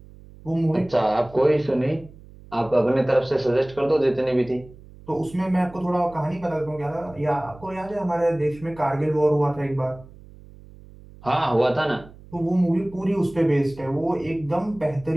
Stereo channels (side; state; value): right; noise; hum, 21 dB below the sound